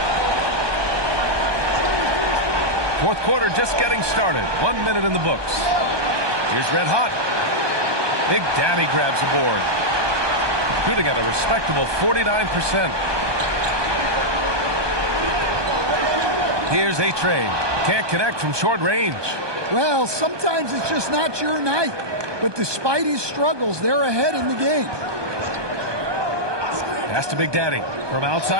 Fourth quarter just getting started. 1 minute in the books. Here's Red Hot. Big Daddy grabs the board. Shooting at a respectable 49%. Here's A-Train. Can't connect from short range. Well, sometimes it's just not your night. But despite his struggles, they're ahead in the game. Pass to Big Daddy. From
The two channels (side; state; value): left; late; 1.2 ms